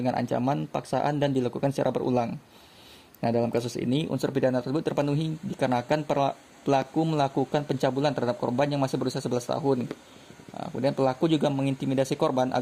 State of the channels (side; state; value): both; identical; correlation 1.00